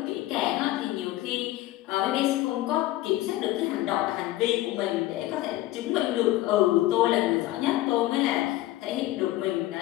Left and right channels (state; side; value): quieter; right; 16.2 dB